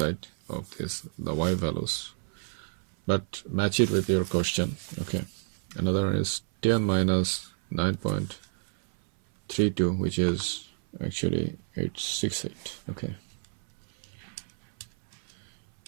of this, the y values, but match it with your question. Okay, another one is 10 minus 9.32, which is actually 868.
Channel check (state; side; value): silent; left; 59 dB below the other